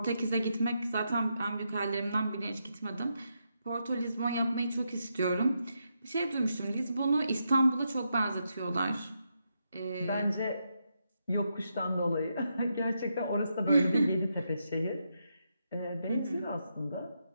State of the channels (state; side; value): inverted; both; correlation -0.82